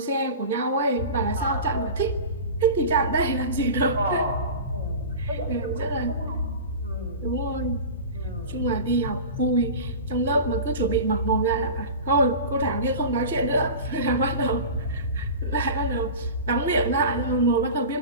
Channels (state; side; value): inverted; both; correlation -0.32